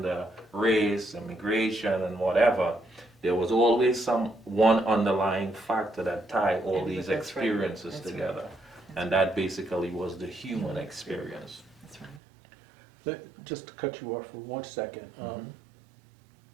race, immigration, and whatever, there was always some one underlying factor that tied all And these that's right. experiences That's right. together. And that basically was the human experience. That's right. Just to cut you off for 1 second,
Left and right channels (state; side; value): drops out; left; at 12.2 s